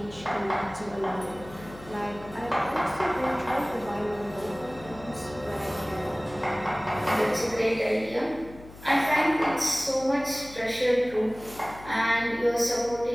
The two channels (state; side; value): noise; left; hum, 18 dB below the sound